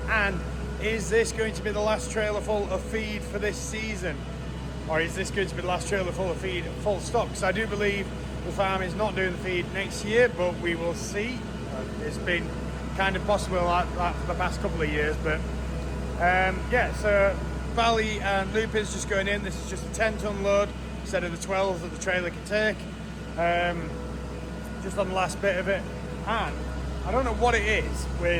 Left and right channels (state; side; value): identical; both; correlation 1.00